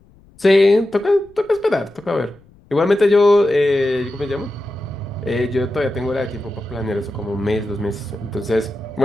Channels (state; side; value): noise; left; rumble, 28 dB below the sound